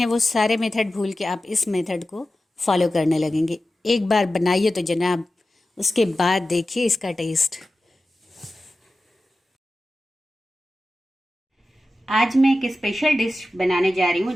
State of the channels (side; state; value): both; normal; correlation 0.94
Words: वो सारे मेथड भूल के आप इस मेथड को फॉलो करने लगेंगे। एक बार बनाइए तो जनाब, उसके बाद देखिए इसका टेस्ट। आज मैं एक स्पेशल डिश बनाने जा रही हूँ